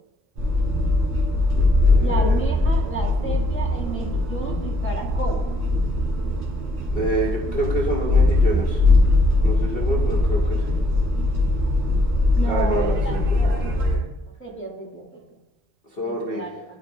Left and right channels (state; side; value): normal; both; correlation 0.72